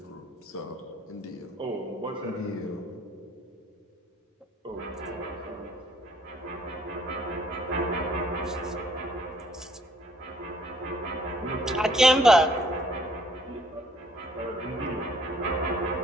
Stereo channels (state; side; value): normal; both; correlation 0.62